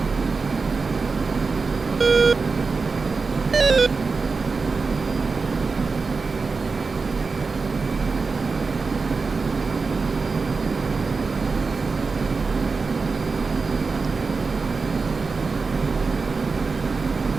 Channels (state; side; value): quieter; left; 4.4 dB